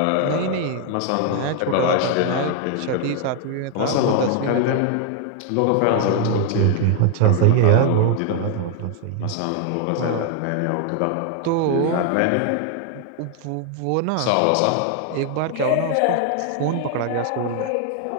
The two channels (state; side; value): different; both; correlation 0.00